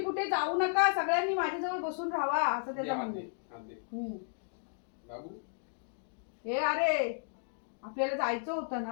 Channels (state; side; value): silent; right; digital silence